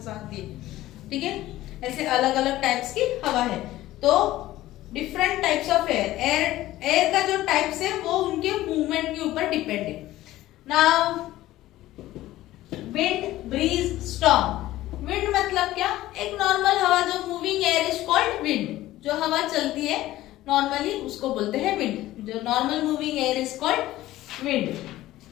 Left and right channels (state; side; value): quieter; right; 15.6 dB